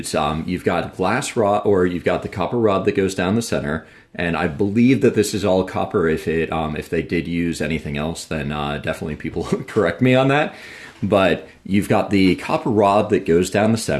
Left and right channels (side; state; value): both; identical; correlation 1.00